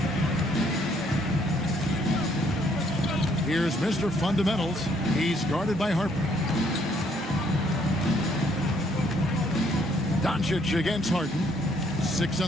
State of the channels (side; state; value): both; normal; correlation 0.67